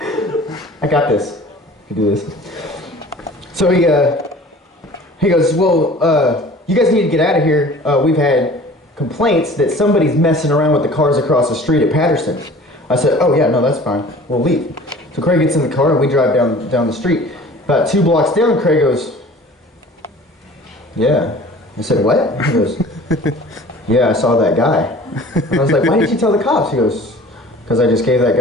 I got this. I can do this. So he goes, well, you guys need to get out of here. We've had complaints that somebody's messing around with the cars across the street at Patterson. I said, oh yeah, no, that's fine. We'll leave. So Craig gets in the car and we drive down the street. About 2 blocks down, Craig goes, yeah. I said, what? He goes, yeah, I saw that guy. And I was like, why didn't you tell the cops? He goes, because I just gave that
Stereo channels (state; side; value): normal; both; correlation 0.46